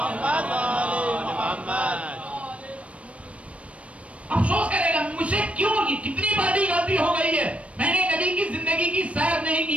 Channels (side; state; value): left; late; 0.063 ms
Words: افسوس کرے گا مجھے کیوں, کتنی بڑی غلطی ہو گئی ہے. میں نے نبی کی زندگی کی سیر نہیں